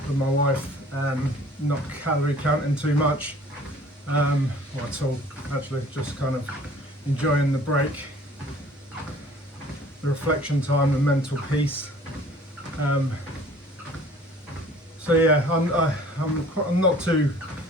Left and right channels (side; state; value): both; normal; correlation 0.52